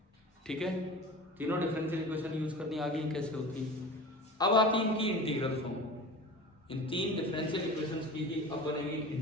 ठीक है, तीनों डिफरेंशियल इक्वेशन यूज करनी आ गई, कैसे होती है। अब आती है इनकी इंटीग्रल फॉर्म। इन 3 डिफरेंशियल इक्वेशंस की ही अब बनेगी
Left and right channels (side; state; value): both; normal; correlation 0.36